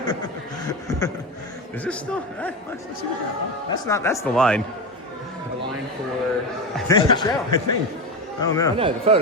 Is this still? Let's see what that. That's the line. The line for the show. I think. Oh no. Oh no, the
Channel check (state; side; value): normal; both; correlation 0.18